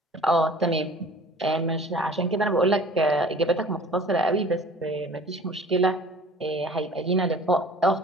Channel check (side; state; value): both; normal; correlation 0.47